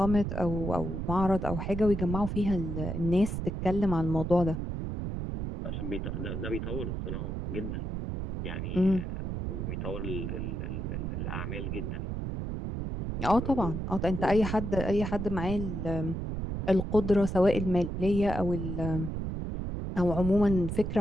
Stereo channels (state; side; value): noise; right; rumble, 4 dB below the sound